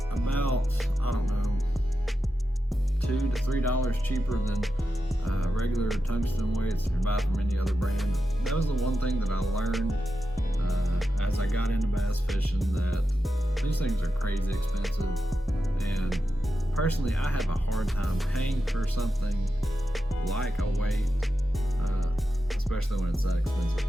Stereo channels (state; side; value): normal; both; correlation 0.90